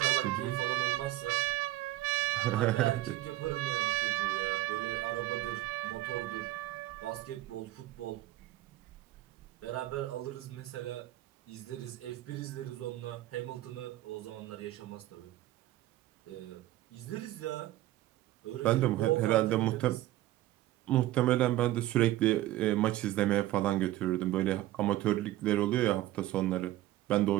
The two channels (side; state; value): left; quieter; 15.4 dB